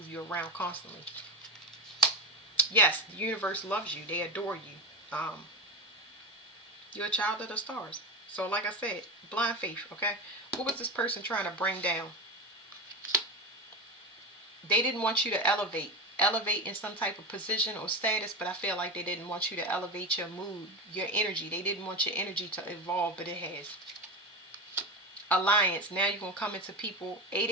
you around constantly. Yes, the universe loves you. They adore you. You're a child of the stars. So like I said, blind faith, okay? What was this person trying to bring down? They didn't want you to elevate in some type of position or status, but I feel like they didn't want you to elevate your mood, your energy. They didn't want your energy to evolve, but it has. alliance. Now you're going to come into people.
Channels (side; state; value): both; normal; correlation 0.19